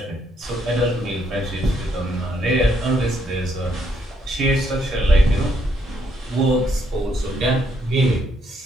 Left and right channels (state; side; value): normal; both; correlation 0.73